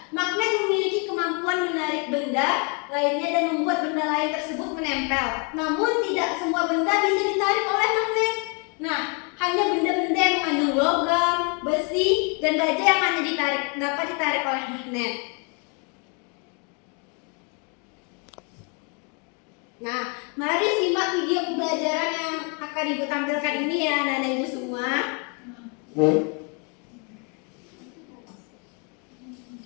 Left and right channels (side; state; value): right; quieter; 35.8 dB